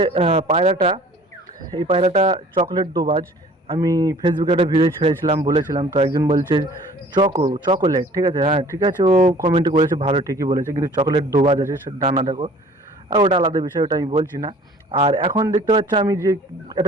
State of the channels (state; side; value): normal; both; correlation 0.50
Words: পায়রাটা, এই পায়রাটা চকলেট দোবাজ। আমি ফেসবুকে একটা ভিডিও ছেড়েছিলাম, বলেছিলাম, তো একজন বলছে চকোলেট, ঠিক আছে? হ্যাঁ ঠিক আছে, ও কমেন্টে করেছে, ভালো ঠিকই বলেছে, কিন্তু চকলেট দোবাজ আছে, ডানা দেখো। আর ওটা আলাদা বিষয়, ওটা আমি বলছি না। আর এখন দেখতে পাচ্ছ আমি যে